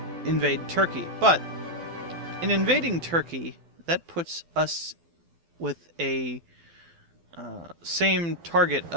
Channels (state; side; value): late; left; 12 ms